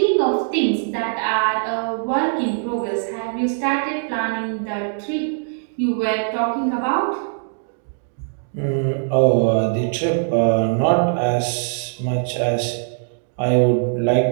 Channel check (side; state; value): left; silent; digital silence